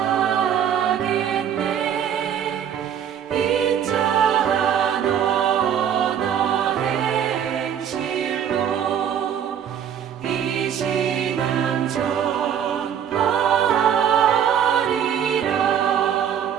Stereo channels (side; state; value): left; quieter; 8.9 dB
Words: 인자한 언어 행실로 이 신앙 전파하리라.